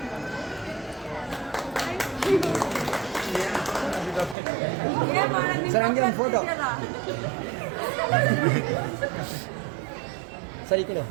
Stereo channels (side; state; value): left; drops out; at 4.4 s